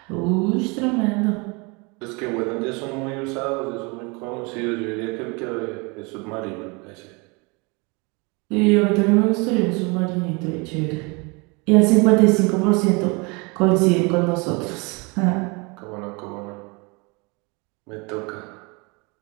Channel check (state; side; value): quieter; left; 29.1 dB